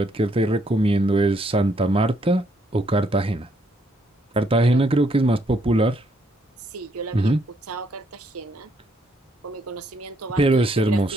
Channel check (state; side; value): normal; both; correlation 0.72